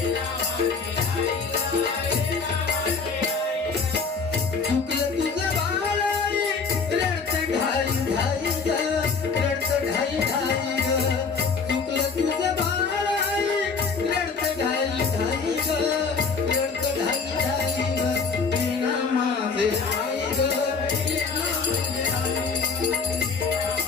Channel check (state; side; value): quieter; right; 5.0 dB